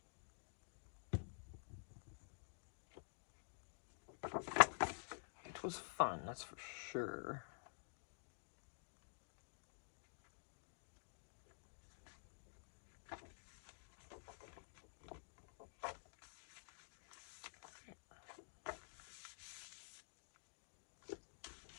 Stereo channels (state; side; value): silent; right; digital silence